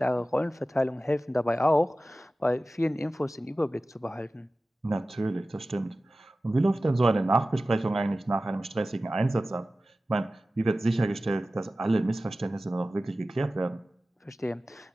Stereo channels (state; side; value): normal; both; correlation 0.96